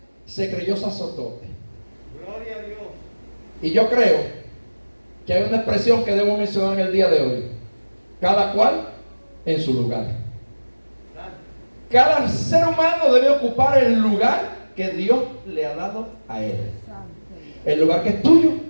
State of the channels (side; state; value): both; inverted; correlation -1.00